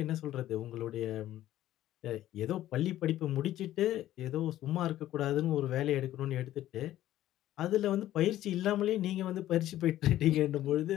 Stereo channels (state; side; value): quieter; right; 13.6 dB